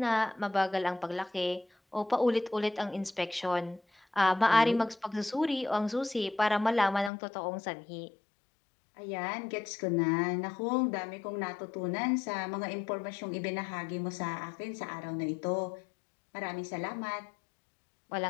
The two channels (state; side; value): drops out; right; at 7.1 s